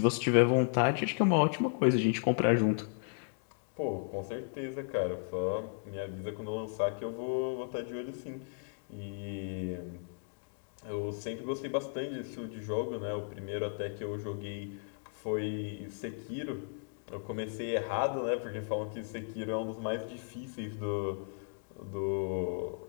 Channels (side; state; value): right; silent; digital silence